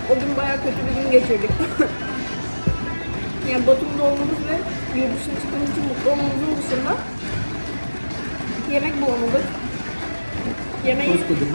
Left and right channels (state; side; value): inverted; both; correlation -1.00